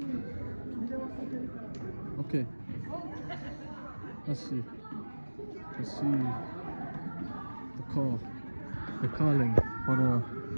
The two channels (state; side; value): inverted; both; correlation -1.00